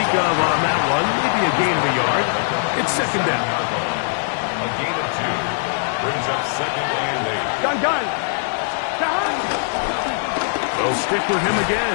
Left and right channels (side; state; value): right; silent; 65 dB below the other